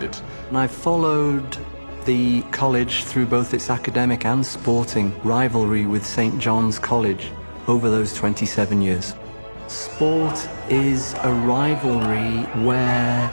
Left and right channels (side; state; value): both; inverted; correlation -1.00